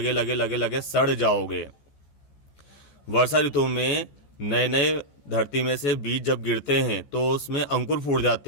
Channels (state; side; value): late; right; 14 ms